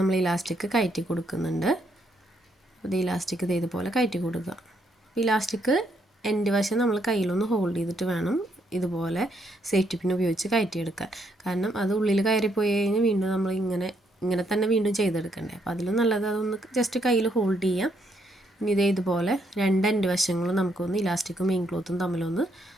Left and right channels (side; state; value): both; normal; correlation 0.74